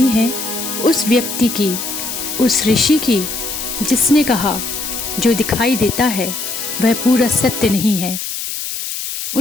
है उस व्यक्ति की, उस ऋषि की, जिसने कहा जो दिखाई देता है वह पूरा सत्य नहीं है।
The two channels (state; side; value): noise; left; hiss, 5 dB below the sound